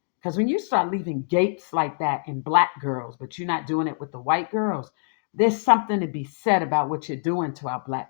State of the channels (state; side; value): silent; right; digital silence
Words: Because when you start leaving gapes like that in Black girls, but you're not doing it with the white girls, there's something to be said about what you're doing to our